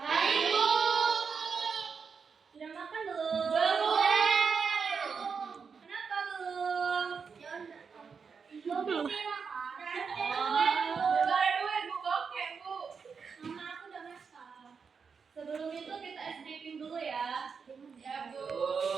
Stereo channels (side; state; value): left; quieter; 5.7 dB